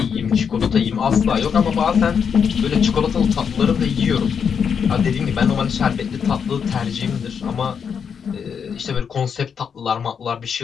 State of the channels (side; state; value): right; quieter; 6.9 dB